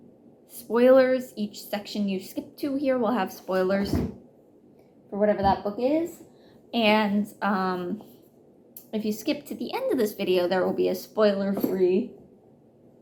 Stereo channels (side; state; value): both; identical; correlation 1.00